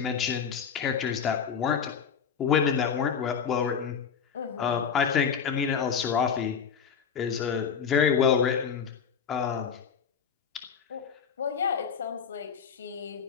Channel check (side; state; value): right; quieter; 6.9 dB